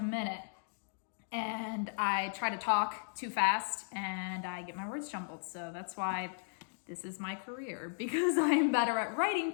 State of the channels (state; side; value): silent; right; digital silence